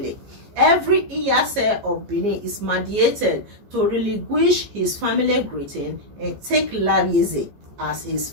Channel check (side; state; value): left; late; 14 ms